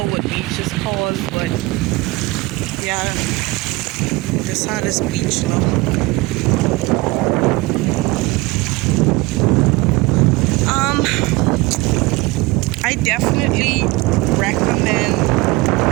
what beach is called, but yeah, this how this beach look. I definitely recommend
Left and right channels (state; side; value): quieter; left; 22.0 dB